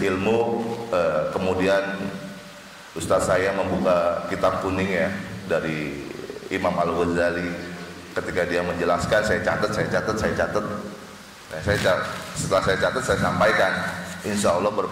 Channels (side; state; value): both; identical; correlation 1.00